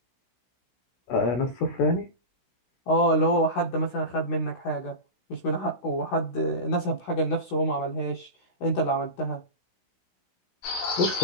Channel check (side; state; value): right; late; 16 ms